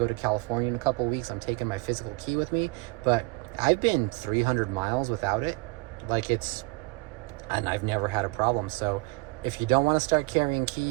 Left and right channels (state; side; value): quieter; left; 24.9 dB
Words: to California in a couple of weeks, I'm taking my physical key with me. But I've been 300 miles without it. And I've never had a problem. So if you don't want to start carrying